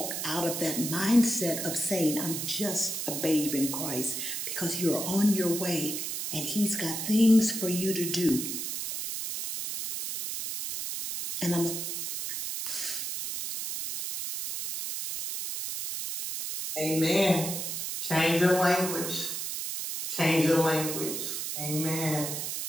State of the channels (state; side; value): noise; right; hiss, 4 dB below the sound